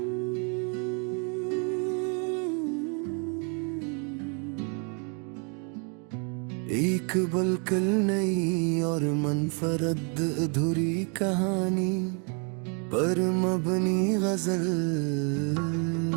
एक बिल्कुल नई और मनफरद अधूरी कहानी पर मबनी गजल,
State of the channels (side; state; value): left; quieter; 38.0 dB